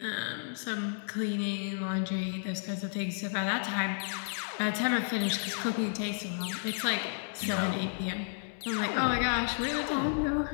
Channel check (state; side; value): silent; right; 56 dB below the other